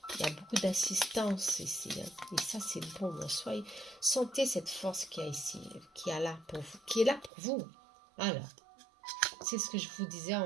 Il y a beaucoup d'assistance ici, hein. Et ça, c'est bon. Soyez, sentez cette force qu'il y a ici, qui est là pour vous, qui est là pour vous. Alors, c'est ce que je vous disais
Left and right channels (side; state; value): left; drops out; at 7.3 s